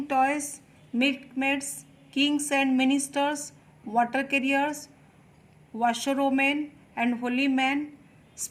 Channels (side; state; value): both; identical; correlation 1.00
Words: toys, milkmaids, kings and ministers, water carriers, washerwomen and holy men.